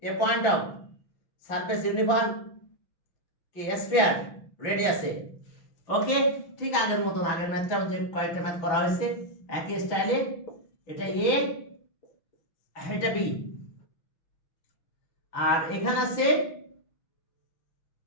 A point of surface uniform কি স্ফিয়ার রেডিয়াসে। ওকে, ঠিক আগের মতন, আগের ম্যাথটা যে কয়েকটা ম্যাথ করা হয়েছে একই স্টাইলে। এটা এ, এটা বি, আর এখানে আছে,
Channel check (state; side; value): late; right; 6.0 ms